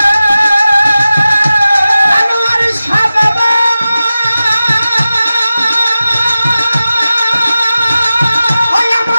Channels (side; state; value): both; inverted; correlation -0.94